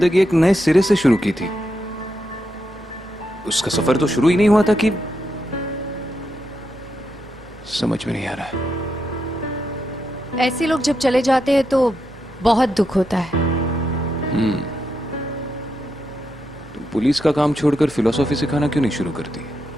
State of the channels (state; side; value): normal; both; correlation 0.83